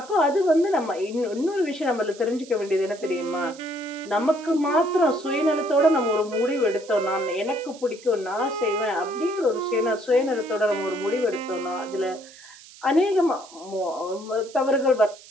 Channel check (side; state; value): right; noise; hiss, 20 dB below the sound